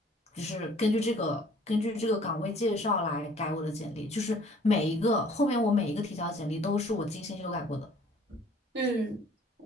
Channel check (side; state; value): both; normal; correlation 0.55